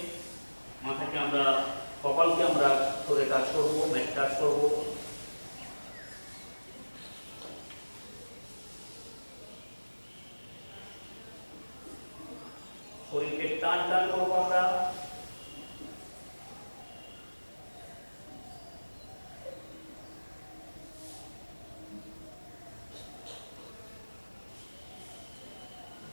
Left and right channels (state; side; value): inverted; both; correlation -1.00